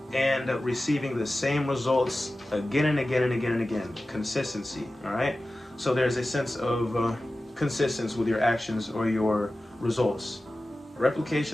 and receiving the same results again and again and again and again. Consistency, all right? So there's a sense of consistency with your actions or your results.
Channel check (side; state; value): both; normal; correlation 0.95